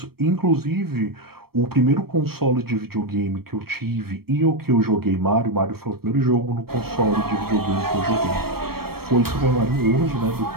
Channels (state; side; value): late; left; 0.94 ms